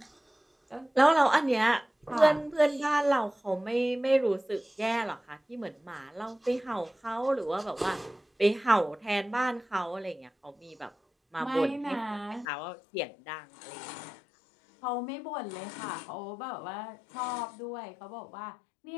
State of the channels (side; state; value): right; drops out; at 12.5 s